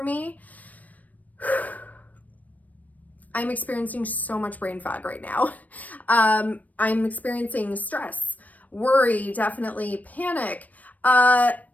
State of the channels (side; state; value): right; late; 0.074 ms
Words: me. I'm experiencing so much brain fog right now. I'm experiencing stress, worry, definitely panic,